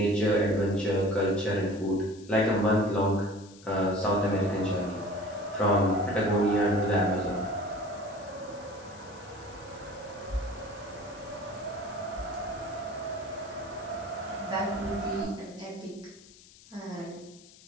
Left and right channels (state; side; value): noise; left; hiss, 23 dB below the sound